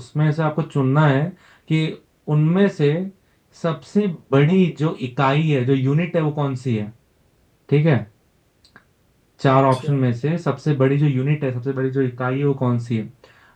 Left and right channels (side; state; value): both; identical; correlation 1.00